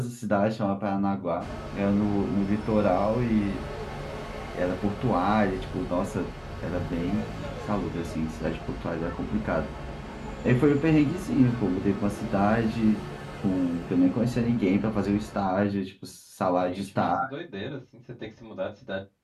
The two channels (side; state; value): both; identical; correlation 1.00